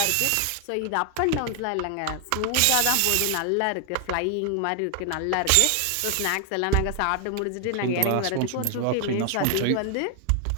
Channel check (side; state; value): both; different; correlation 0.00